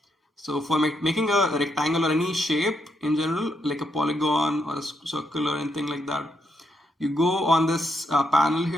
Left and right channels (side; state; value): both; normal; correlation 0.79